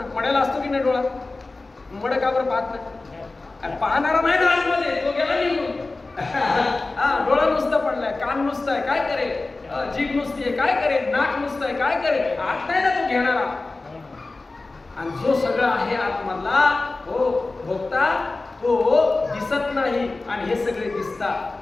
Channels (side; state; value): right; quieter; 3.4 dB